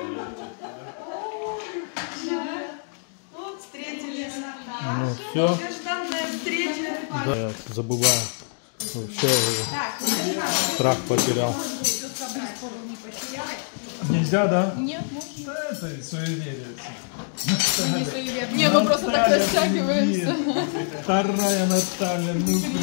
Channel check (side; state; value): right; silent; 62 dB below the other